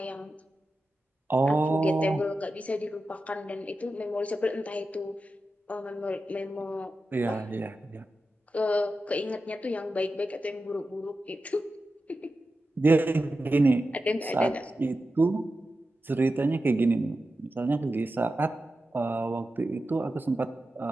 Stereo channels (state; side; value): normal; both; correlation 0.92